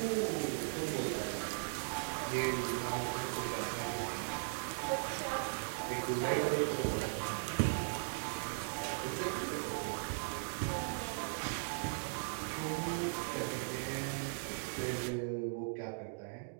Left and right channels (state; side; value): silent; left; digital silence